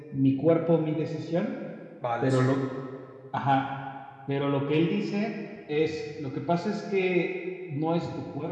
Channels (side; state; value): both; identical; correlation 1.00